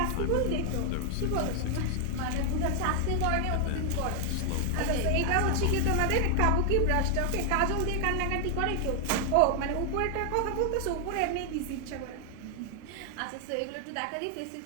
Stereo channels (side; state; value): both; different; correlation 0.00